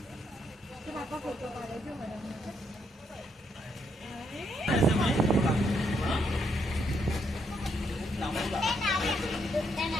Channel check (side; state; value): both; normal; correlation 0.76